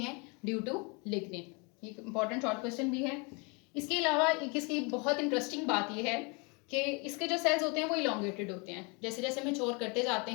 Due to lignin. ये इंपॉर्टेंट शॉर्ट क्वेश्चन भी है। इसके अलावा इसकी बहुत इंटरेस्टिंग बात ये है कि इसके जो सेल्स होते हैं वो इलोंगेटेड होते हैं, जैसे जैसे मैच्योर करते जाते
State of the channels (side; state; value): right; quieter; 31.5 dB